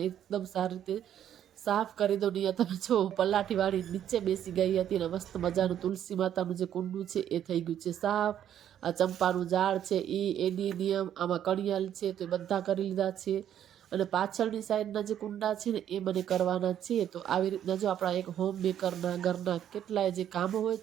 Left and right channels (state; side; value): quieter; left; 10.3 dB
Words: એકદમ સારી રીતે સાફ કરી દો નહીં તમે જો પલાઠી વાળી નીચે બેસી ગઈ હતી ને મસ્ત મજાનું તુલસી માતાનું જે કુંડું છે એ થઈ ગયું છે સાફ આ ચંપાનું ઝાડ છે એની નિયમ આમાં કણિયાલ છે તો એ બધા કરી લીધા છે અને પાછળની સાઈડના જે કુંડા છે ને એ મને કરવાના છે તો આવી રીતના જો આપણા એક હોમ મેકરના ઘરના કેટલાય જે કામો હોય